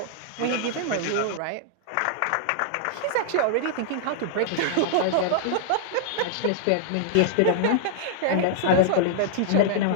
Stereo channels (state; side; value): different; both; correlation -0.01